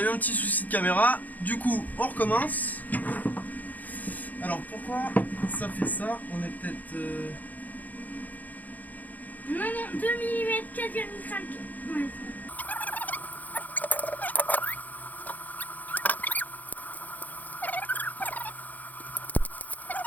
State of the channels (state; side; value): late; right; 0.081 ms